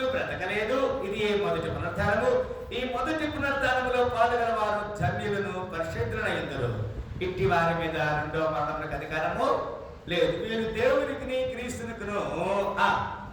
బ్రతకలేదు. ఇది మొదటి పునరుద్ధానము. ఈ మొదటి పునరుద్ధానములో పాల్గొన వారు ధన్యులను, పరిశుద్ధులైందరు. ఇట్టి వారి మీద రెండవ మరణములకు అధికారము లేదు. వీరు దేవునికి క్రీస్తునికును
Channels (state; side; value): identical; both; correlation 1.00